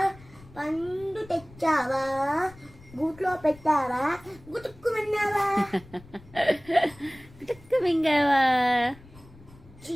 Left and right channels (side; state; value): left; noise; rumble, 22 dB below the sound